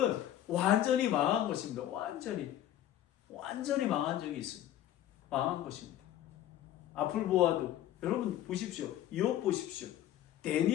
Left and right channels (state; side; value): quieter; right; 12.2 dB